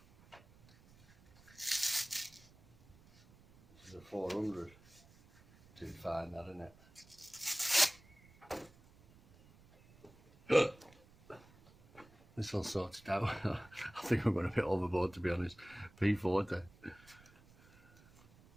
This is a 400. Too fine, that, isn't it? This all sorted out. I think I'm going a bit overboard, to be honest. P40.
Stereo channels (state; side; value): noise; right; rumble, 26 dB below the sound